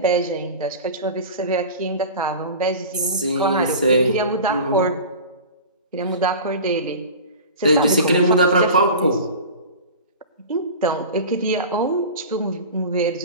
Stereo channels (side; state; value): both; inverted; correlation -0.34